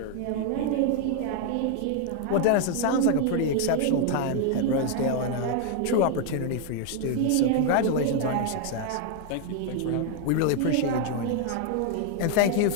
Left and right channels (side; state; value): both; different; correlation 0.00